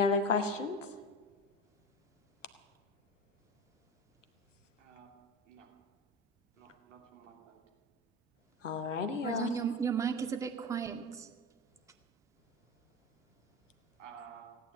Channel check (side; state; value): both; normal; correlation 0.27